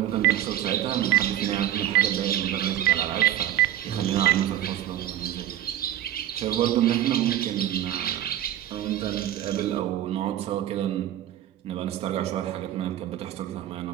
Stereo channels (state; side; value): quieter; left; 12.3 dB